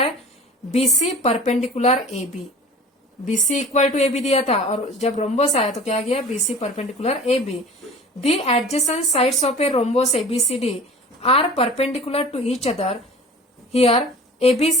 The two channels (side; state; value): both; normal; correlation 0.42